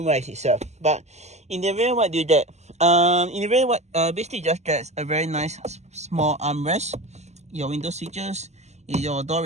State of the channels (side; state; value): left; late; 0.33 ms